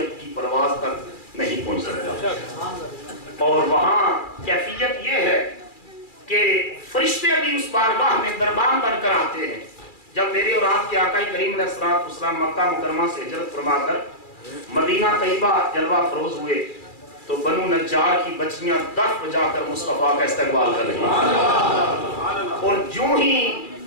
کی پرواز تک نہیں پہنچ سکتا۔ اور وہاں کیفیت یہ ہے کہ فرشتے بھی اس بارگاہ میں دربان بن کر آتے ہیں۔ جب میرے اور آپ کے آقا کریم علیہ السلام مکہ مکرمہ سے ہجرت فرما کر مدینہ طیبہ جلوہ فروز ہوئے، تو بنو نجار کی بچیاں دف بجا کر مصطفیٰ کا استقبال کر رہی ہیں، اور جو ہی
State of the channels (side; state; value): right; late; 2.4 ms